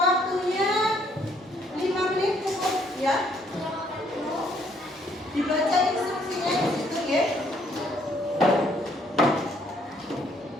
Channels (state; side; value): normal; both; correlation 0.67